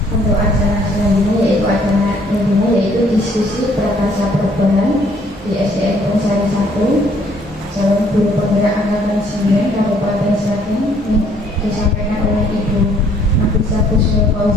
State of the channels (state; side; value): normal; both; correlation 0.63